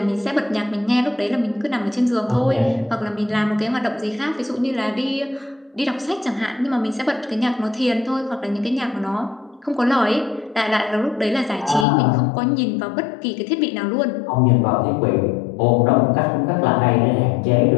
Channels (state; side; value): drops out; right; at 11.9 s